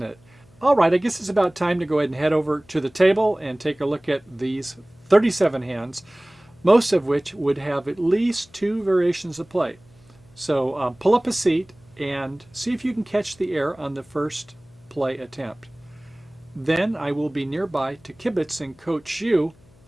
it? All right, I guess it's about time to go ahead and head over to the table and take a look at these 37 hands, most of which would have at least 2 variations of play. So pull up a seat and see if you can catch the air on the first play attempt. Then I will be nearby to kibitz and coach you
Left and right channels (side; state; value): left; noise; hum, 28 dB below the sound